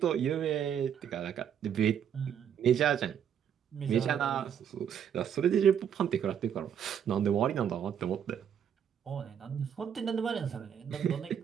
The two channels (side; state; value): left; quieter; 8.6 dB